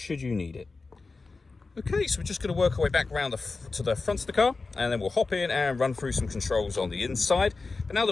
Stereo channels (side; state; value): right; quieter; 3.9 dB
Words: you need it. Okay, so we're just going to work our way back around to the front of the car, and then we'll hop in and run through some controls on the inside. But now